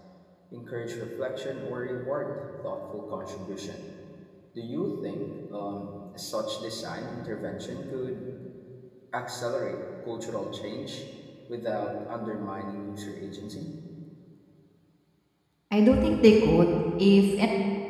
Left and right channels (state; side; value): identical; both; correlation 1.00